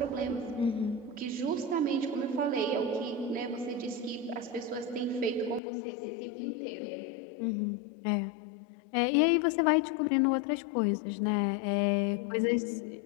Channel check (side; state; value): right; drops out; at 5.6 s